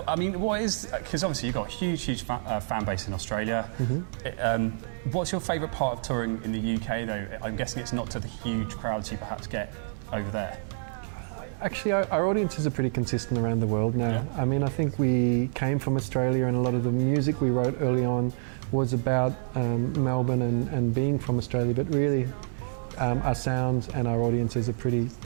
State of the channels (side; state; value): left; silent; digital silence